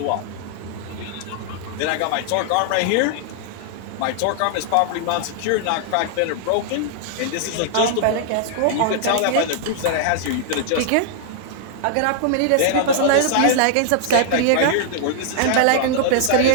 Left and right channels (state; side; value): different; both; correlation -0.01